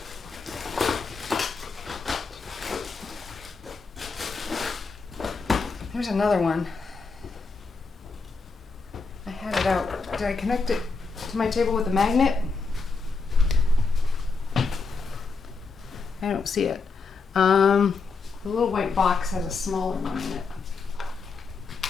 There's another one. I had it out. Did I connect it to my table with a magnet? I don't see it. The little white box has a smaller one in it.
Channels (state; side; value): quieter; right; 4.5 dB